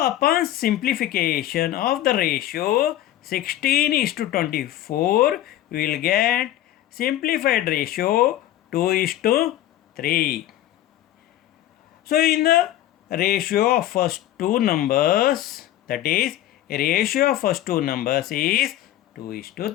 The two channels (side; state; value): right; quieter; 13.4 dB